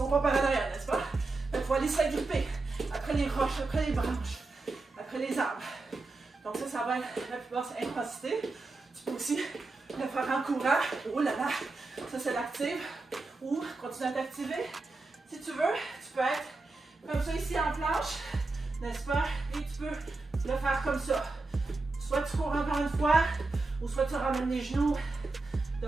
pas par derrière, n'est-ce pas? Il faut aller s'agripper après les roches, après les branches, après les arbres. Donc ça va être la plus basse intensité. Tu peux aussi le faire en courant. Oh là là, ça c'est l'active. Ou continue à t'activer. Si tu veux, tu peux être comme ça ici en planche, n'est-ce pas? Et tu peux le faire comme ça. Soit tu cours encore une fois, ou soit tu ramènes les genoux.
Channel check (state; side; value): quieter; left; 3.5 dB